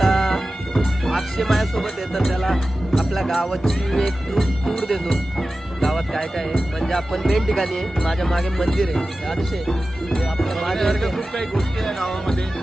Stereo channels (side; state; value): both; normal; correlation 0.94